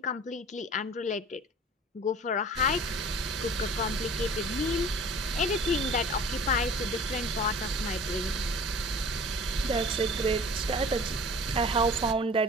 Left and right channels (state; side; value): normal; both; correlation 0.45